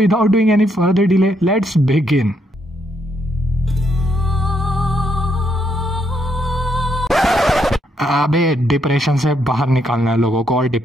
doing any further delay, let's begin. अबे डिप्रेशन से बाहर निकालना है लोगों को, और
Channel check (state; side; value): normal; both; correlation 0.75